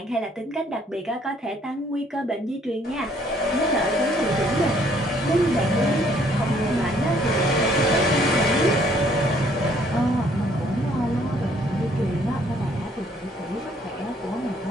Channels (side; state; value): both; normal; correlation 0.63